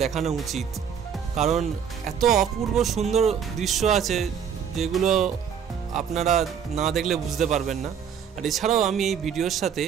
দেখানো উচিত, কারণ এত অপূর্ব সুন্দর দৃশ্য আছে যেগুলো আপনারা না দেখলে বুঝতে পারবেন না। আর এছাড়াও আমি এই ভিডিওর সাথে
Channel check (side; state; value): left; quieter; 7.7 dB